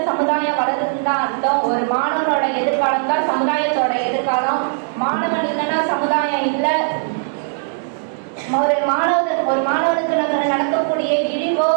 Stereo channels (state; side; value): silent; left; digital silence